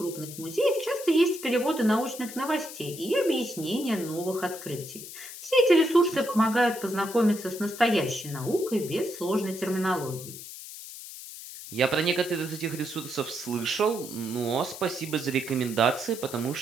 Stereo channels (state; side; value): noise; left; hiss, 12 dB below the sound